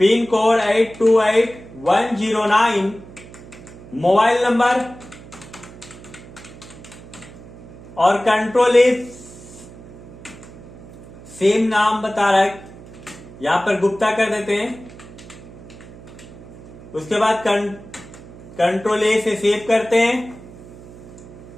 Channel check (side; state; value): right; noise; hum, 18 dB below the sound